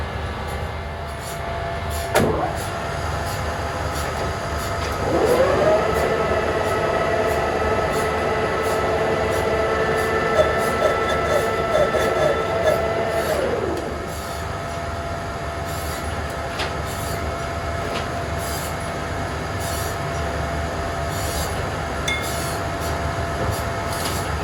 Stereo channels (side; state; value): both; identical; correlation 1.00